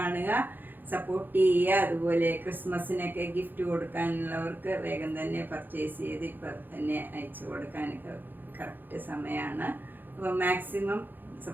സപ്പോർട്ട് ചെയ്യുക. അതുപോലെ ക്രിസ്മസിനൊക്കെ ഗിഫ്റ്റ് കൊടുക്കാനുള്ളവർക്ക് വേഗം തന്നെ പർച്ചേസ് ചെയ്ത് ഇപ്പം തന്നെ അയച്ചു കൊടുക്കാനൊക്കെ കറക്റ്റ് സമയമാണ്. അപ്പോൾ മാക്സിമം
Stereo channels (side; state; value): left; late; 0.090 ms